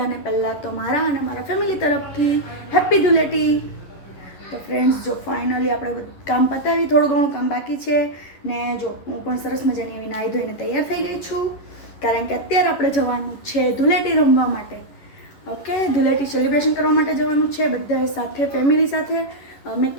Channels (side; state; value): right; late; 11 ms